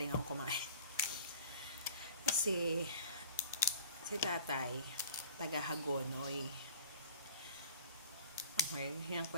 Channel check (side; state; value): both; inverted; correlation -0.43